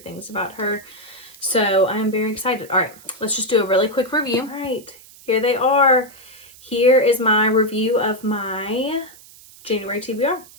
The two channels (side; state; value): right; noise; hiss, 22 dB below the sound